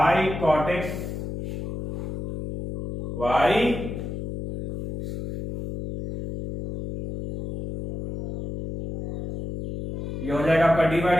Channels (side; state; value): left; noise; hum, 6 dB below the sound